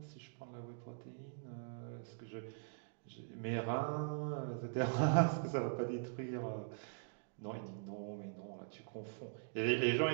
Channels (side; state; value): left; silent; digital silence